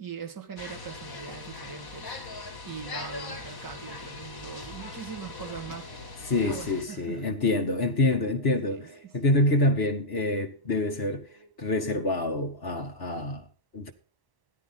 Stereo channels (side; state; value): right; late; 1.1 ms